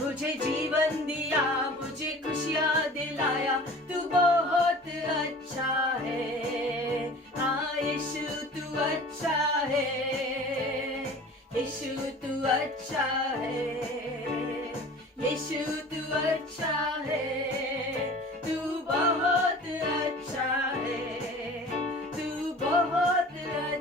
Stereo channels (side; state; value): both; normal; correlation 0.43